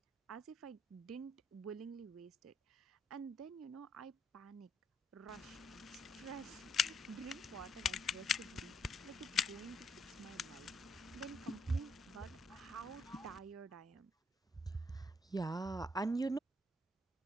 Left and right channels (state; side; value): normal; both; correlation 0.73